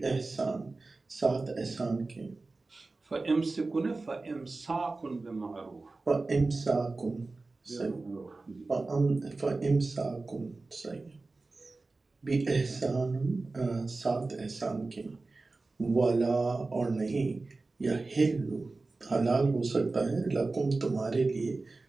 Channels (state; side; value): quieter; left; 3.5 dB